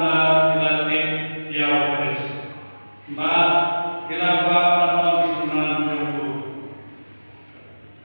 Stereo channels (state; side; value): inverted; both; correlation -1.00